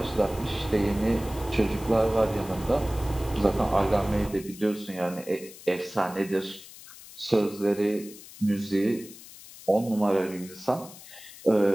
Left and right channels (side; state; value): left; noise; hiss, 17 dB below the sound